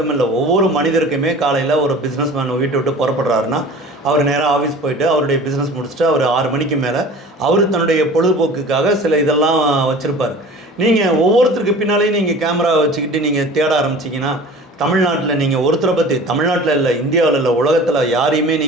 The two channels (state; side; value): normal; both; correlation 0.41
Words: ஒவ்வொரு மனிதருக்குமே காலையில் ஒரு பிஸ்னஸ் மேன் வீட்டை விட்டு புறப்படுறாருன்னா அவர் நேராக ஆஃபீஸ் போயிட்டு அவருடைய பிஸ்னஸ் முடிச்சுட்டு அவர் 6 மணிக்கு மேலே அவர் தன்னுடைய பொழுதுபோக்குக்காக சில இதெல்லாம் வச்சுருப்பார். நீங்கள் ஒவ்வொருத்தருக்கு பின்னாலேயும் நீங்கள் கேமரா வச்சுக்கிட்டு நீங்கள் தேட ஆரம்பிச்சிங்கன்னா, தமிழ்நாட்டில் நீங்கள் ஒருத்தரை பற்றி, தமிழ்நாட்டில் இல்லை, இந்தியாவில் இல்லை, உலகத்தில் யாரையுமே